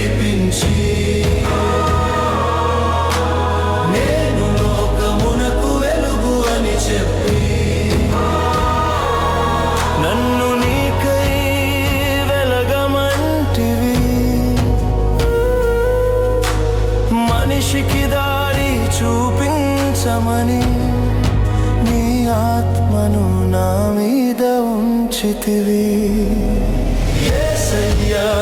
నేను లోకమునకు వెలుగు అని చెప్పి నన్ను నీకై వెలగమంటివి. మనిషికి దారి చూపించమని నీ ఆత్మను నా మీద ఉంచితివి. యేసయ్యా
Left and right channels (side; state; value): both; identical; correlation 1.00